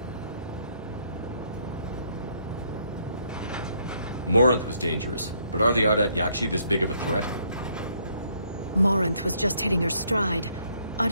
Morinth was dangerous, but are the Ardat Yakshi this big of a threat? Morinth was just hitting her stride.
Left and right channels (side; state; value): both; inverted; correlation -0.69